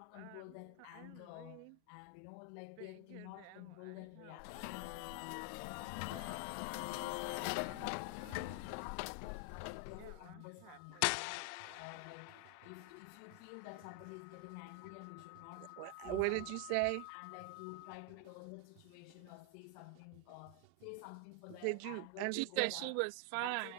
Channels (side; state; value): both; different; correlation 0.00